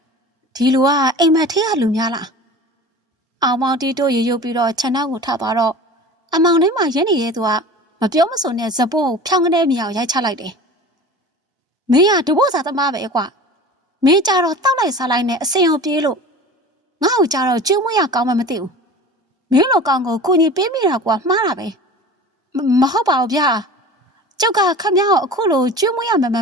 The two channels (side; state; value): both; normal; correlation 0.37